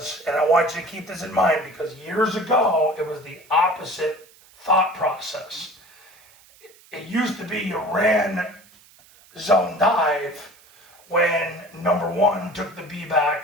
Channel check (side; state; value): right; noise; hiss, 27 dB below the sound